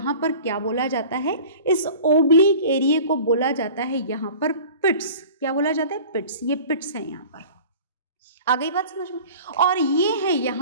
पर क्या बोला जाता है? इस ओब्लिक एरिया को बोला जाता है यहाँ पर पिट्स। क्या बोला जाता है? पिट्स। ये पिट्स हैं यहाँ पर। आ गई बात समझ में? और ये है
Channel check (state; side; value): inverted; both; correlation -0.42